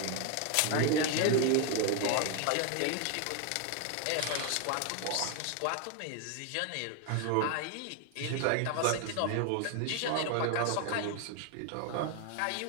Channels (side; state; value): both; different; correlation 0.01